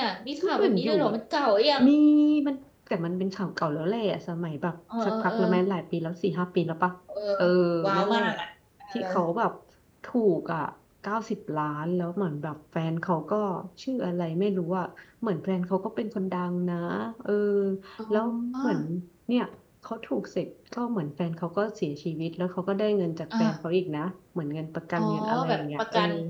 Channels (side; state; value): both; identical; correlation 1.00